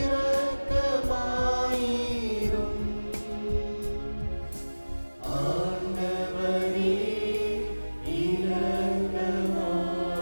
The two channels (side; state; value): both; inverted; correlation -1.00